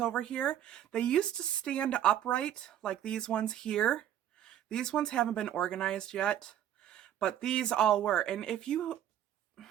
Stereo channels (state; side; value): quieter; left; 10.9 dB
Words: here. They used to stand upright, like these ones here. These ones haven't been organized yet, but these all were. And